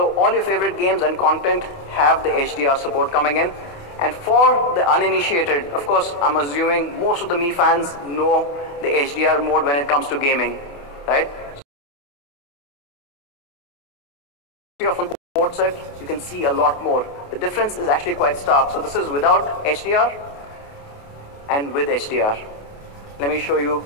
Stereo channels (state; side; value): late; right; 28 ms